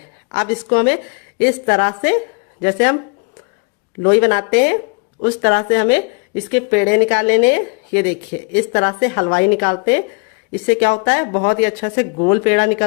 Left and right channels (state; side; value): quieter; right; 33.2 dB